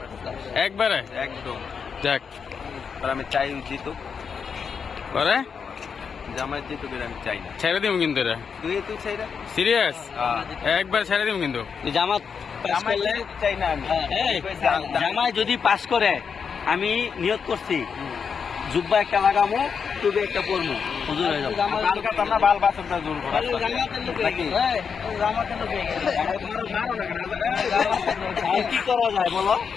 একবারে একদম। যাক আমি চাই জিতুক, পরে জামায়াত জিতুক, আমি চাই না। ছেড়ে দিব কিন্তু এটা তুই চাই না? সিরিয়াস একবার ছেড়ে দিব কিন্তু। জামাত চাই না আমি। জামাই যদি পাস করে আমি নিয়ত করছি জুব্বা একটা লাগামো, টুপি একটা পরবো, হুজুর হয়ে যাবো। কি করা যায় বলো?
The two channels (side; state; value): right; quieter; 6.3 dB